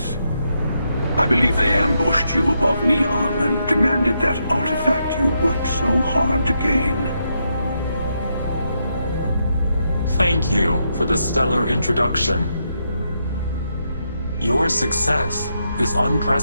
I believe they ambushed you above Neon and demanded that artifact you worked so hard to gain. Thank you for the stellar introduction. Your success is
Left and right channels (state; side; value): inverted; both; correlation -0.81